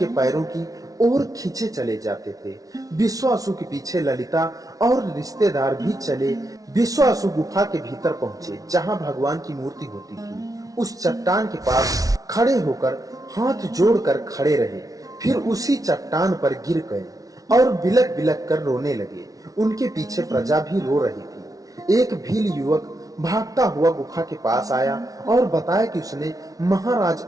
पैरों की ओर खींचे चले जाते थे। विश्वासु के पीछे ललिता और रिश्तेदार भी चले। विश्वासु गुफा के भीतर पहुंचे जहां भगवान की मूर्ति होती थी। उस चट्टान के पास खड़े होकर हाथ जोड़कर खड़े रहे, फिर उसी चट्टान पर गिर गए और बिलक बिलक कर रोने लगे। उनके पीछे प्रजा भी रो रही थी। एक भील युवक भागता हुआ गुफा के पास आया और बताया कि उसने महाराज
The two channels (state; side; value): late; left; 0.18 ms